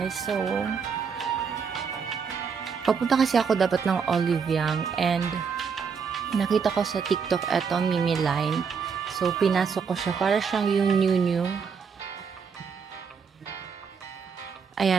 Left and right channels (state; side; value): quieter; left; 6.1 dB